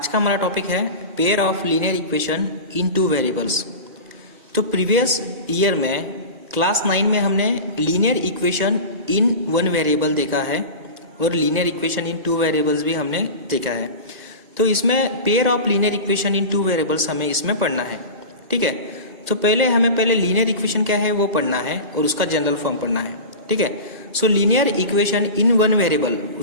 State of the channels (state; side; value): late; left; 1.8 ms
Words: का हमारा टॉपिक है pair of linear equation in two variables. तो प्रीवियस ईयर में क्लास 9 में हमने linear equation in one variable देखा है और linear equation in two variables भी हमने देखा है। तो इसमें pair of linear equation in two variables हमें इसमें पढ़ना है, ठीक है। तो हमें लीनियर इक्वेशन क्या है वो पढ़ना है और उसका जनरल फॉर्म पढ़ना है, ठीक है। So linear equation in one variable,